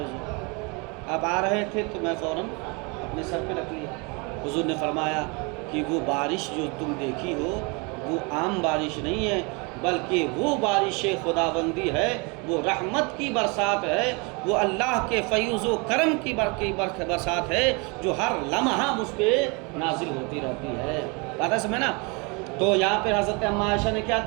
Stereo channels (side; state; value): left; quieter; 30.5 dB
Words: آپ آ رہے تھے تو میں فوراً اپنے سر پہ رکھ لیا۔ حضور نے فرمایا کہ وہ بارش جو تم دیکھی ہو وہ عام بارش نہیں ہے، بلکہ وہ بارش خداوندی ہے، وہ رحمت کی برسات ہے، وہ اللہ کے فیض و کرم کی برسات ہے جو ہر لمحہ مجھ پہ نازل ہوتی رہتی ہے۔ بات ہے سمجھے نا؟ تو یہاں پہ حضرت اماں عائشہ نے کیا